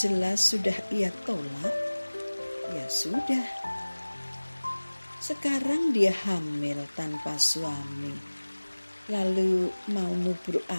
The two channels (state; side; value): inverted; both; correlation -1.00